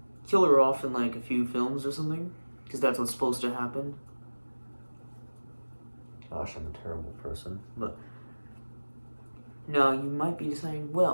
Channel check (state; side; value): inverted; both; correlation -1.00